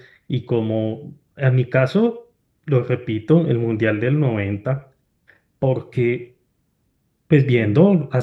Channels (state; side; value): identical; both; correlation 1.00